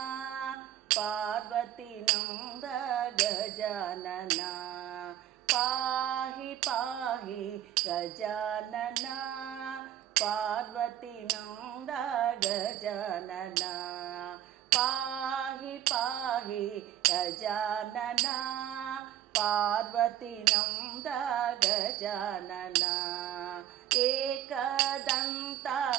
పార్వతీ నంద గజానన, పాహి పాహి గజానన పార్వతీ నంద గజానన, పాహి పాహి గజానన పార్వతీ నంద గజానన, ఏకదంత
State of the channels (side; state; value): left; quieter; 11.4 dB